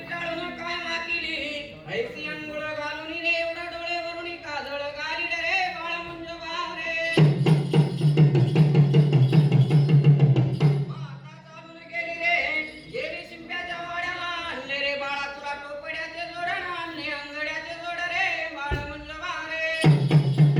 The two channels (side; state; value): both; identical; correlation 1.00